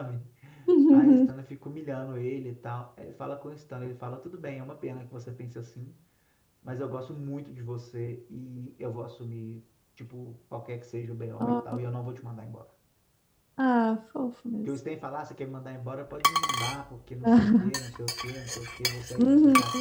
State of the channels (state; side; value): identical; both; correlation 1.00